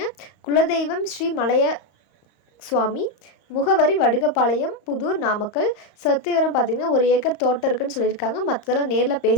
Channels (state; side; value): late; right; 35 ms